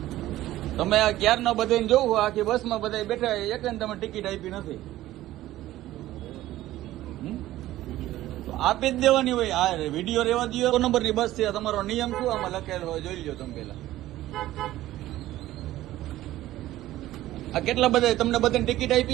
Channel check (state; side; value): quieter; left; 15.2 dB